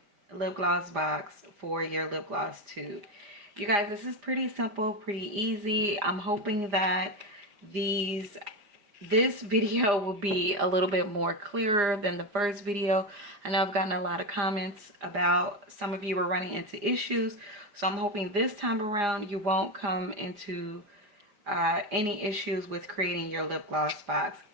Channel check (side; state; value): left; late; 4.9 ms